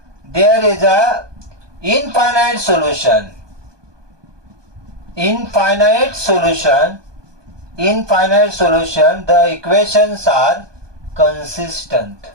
there is a infinite solution. The equations are consistent.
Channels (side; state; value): left; late; 1.2 ms